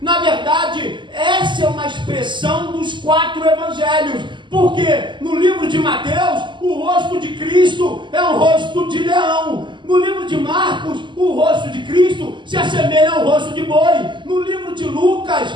verdade, essa é uma expressão dos 4 evangelhos. Porque no livro de Mateus, o rosto de Cristo é um rosto de leão. No livro de Marcos, o rosto de Cristo se assemelha ao rosto de boi. No livro de Lucas,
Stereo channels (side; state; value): left; late; 0.23 ms